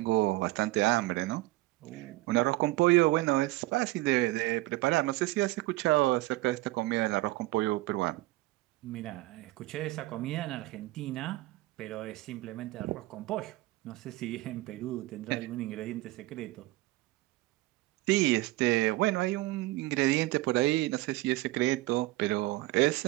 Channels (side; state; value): left; quieter; 19.0 dB